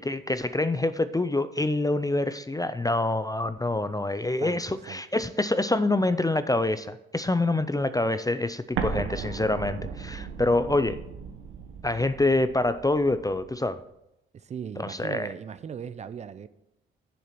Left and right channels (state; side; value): normal; both; correlation 0.74